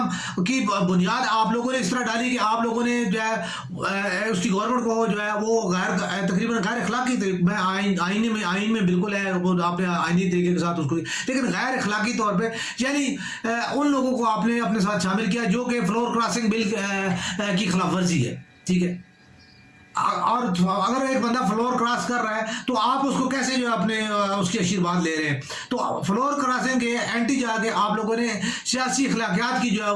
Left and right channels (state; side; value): identical; both; correlation 1.00